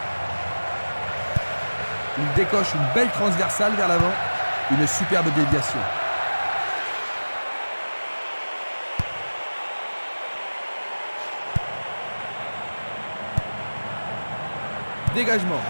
Il décoche une belle transversale vers l'avant. Une superbe déviation. Dégagement.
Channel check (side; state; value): both; inverted; correlation -1.00